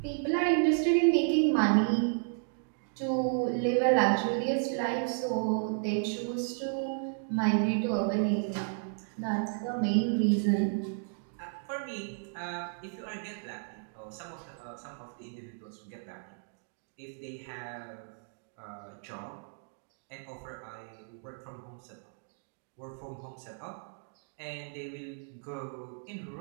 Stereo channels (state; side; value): silent; left; digital silence